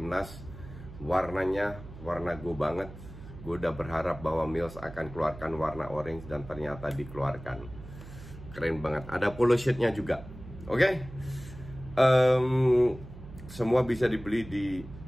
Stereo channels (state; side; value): noise; right; hum, 15 dB below the sound